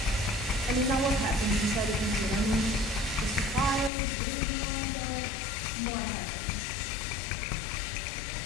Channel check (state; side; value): drops out; right; at 3.9 s